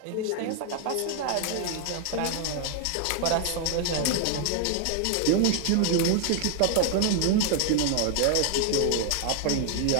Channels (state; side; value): different; both; correlation 0.01